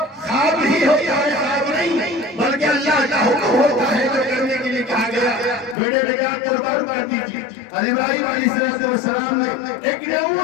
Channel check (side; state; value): right; drops out; at 5.8 s